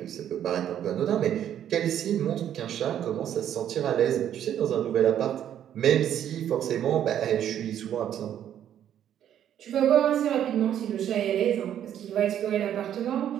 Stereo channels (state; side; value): quieter; left; 10.3 dB